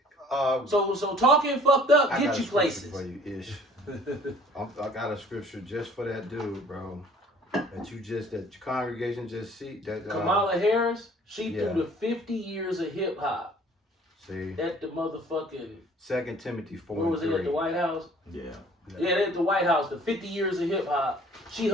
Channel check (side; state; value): both; normal; correlation 0.53